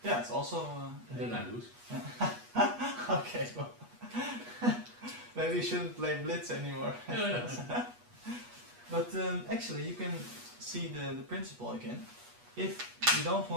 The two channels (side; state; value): left; late; 8.3 ms